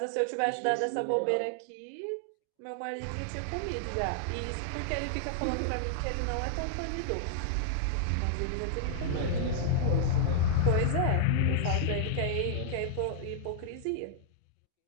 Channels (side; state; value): both; different; correlation -0.01